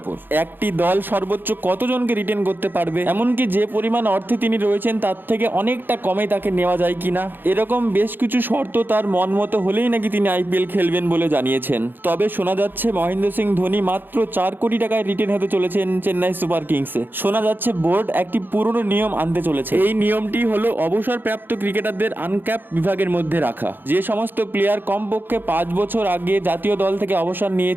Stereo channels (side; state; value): left; late; 0.094 ms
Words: একটি দল সর্বোচ্চ কতজনকে রিটেন করতে পারবে, এমনকি যে পরিমাণ অর্থে তিনি রয়েছেন তার থেকে অনেকটা কমে তাকে নেওয়া যায় কিনা, এরকম বেশ কিছু শর্ত তার মন মতো হলেই নাকি তিনি আইপিএল খেলবেন বলে জানিয়েছেন। তবে শোনা যাচ্ছে মহেন্দ্র সিং ধোনি মাত্র 4 কোটি টাকায় রিটেন হতে চলেছেন চেন্নাই সুপার কিংসে। শোনা যাচ্ছে বোর্ড একটি পুরনো নিয়ম আনতে চলেছে। এই নিয়মটি হলো অবসরপ্রাপ্ত ক্রিকেটারদের আনক্যাপ বিভাগের মধ্যে রাখা। যে সমস্ত প্লেয়ার কমপক্ষে 5 বছর আগে জাতীয় দল থেকে অবসর